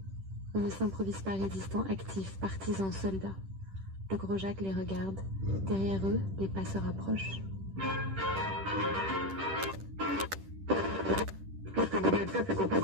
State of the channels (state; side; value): late; left; 10 ms